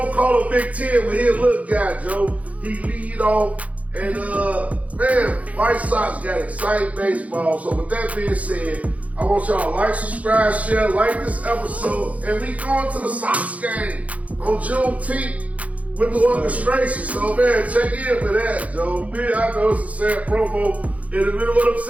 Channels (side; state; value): left; late; 0.068 ms